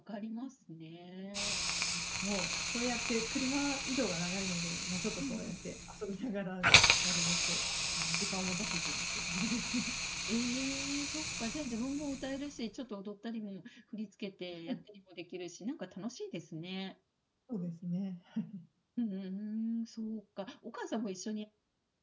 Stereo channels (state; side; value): identical; both; correlation 1.00